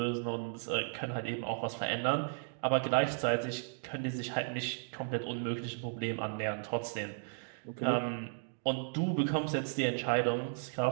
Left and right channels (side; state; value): left; silent; digital silence